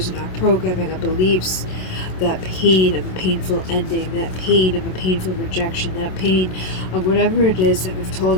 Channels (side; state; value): right; late; 27 ms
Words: and our programming of beliefs, that pain of a painful ending, that pain of a painful rejection, that pain of whatever it is that we've told